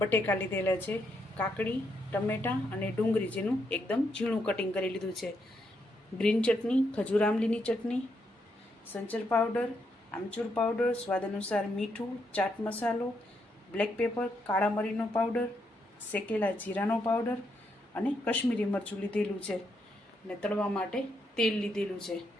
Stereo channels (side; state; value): both; normal; correlation 0.78